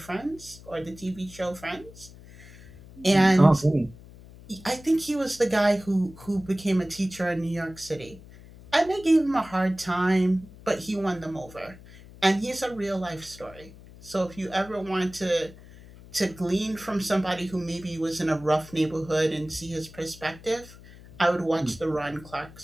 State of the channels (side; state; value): left; noise; hum, 19 dB below the sound